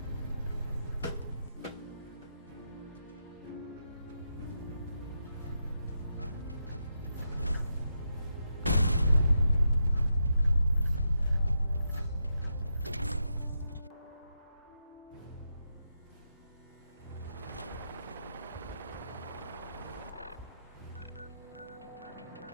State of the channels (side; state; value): both; inverted; correlation -0.84